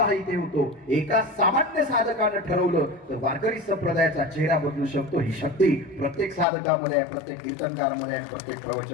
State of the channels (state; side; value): drops out; right; at 6.5 s